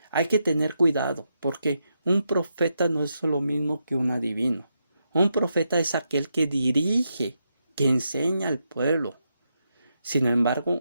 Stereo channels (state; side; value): inverted; both; correlation -0.83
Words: hay que tener cuidado, porque un profeta no es lo mismo que un adivino. Un profeta es aquel que dirige, que enseña al pueblo. Sin